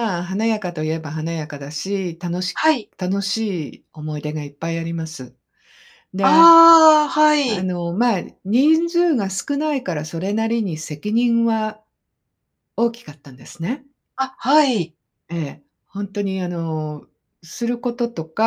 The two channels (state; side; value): identical; both; correlation 1.00